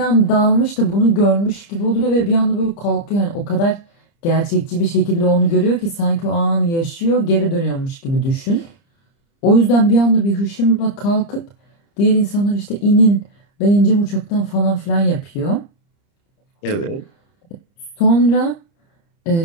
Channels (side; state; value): right; late; 30 ms